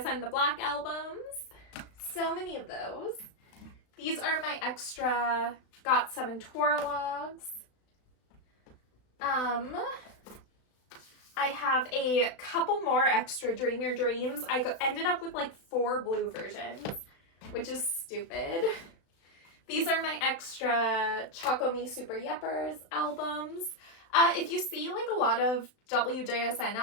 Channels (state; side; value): late; right; 36 ms